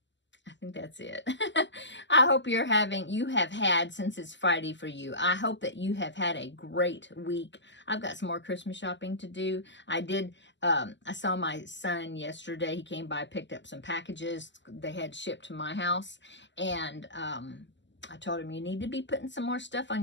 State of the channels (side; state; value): right; late; 0.53 ms